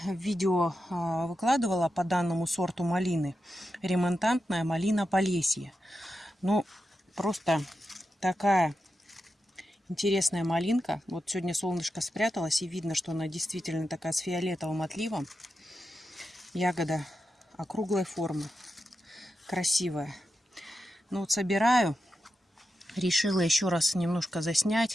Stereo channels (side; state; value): both; normal; correlation 0.89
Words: видео выкладывала по данному сорту малины. Ремонтантная малина Полесье. Ну, просто такая интересная малинка. Вот сегодня солнышко спряталось, и видно, что она действительно такая с фиолетовым отливом. Ягода округлой формы, красивая. Ну вот собираю. Решила еще раз немножко